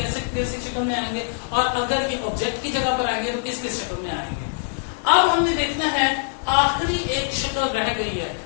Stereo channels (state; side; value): silent; right; digital silence